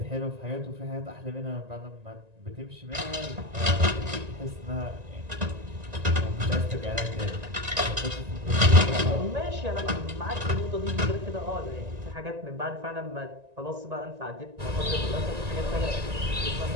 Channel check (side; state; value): left; late; 1.9 ms